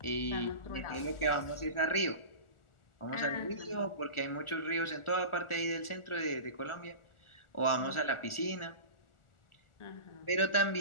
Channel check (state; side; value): late; right; 1.4 ms